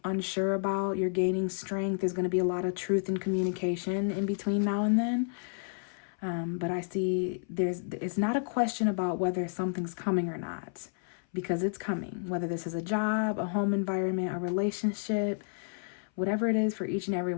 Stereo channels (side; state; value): right; silent; 57 dB below the other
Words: unsure about. You're gaining strength. There's going to be a lot of truth and communication in between now and then. But I see it's not a question about whether something's coming or not, because it's coming. Whether this is a job, a home environment, a relationship, whatever it is for each and every